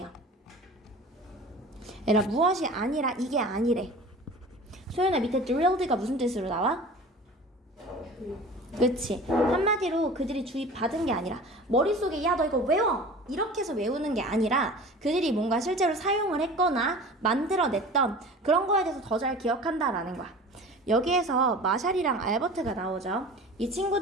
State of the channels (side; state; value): both; normal; correlation 0.39